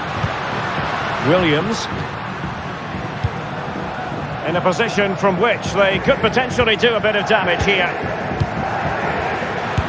Williams. In a position from which they could potentially do a bit of damage here.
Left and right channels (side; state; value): both; identical; correlation 1.00